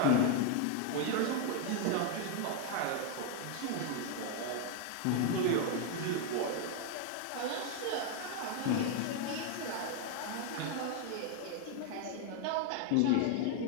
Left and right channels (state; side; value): different; both; correlation 0.00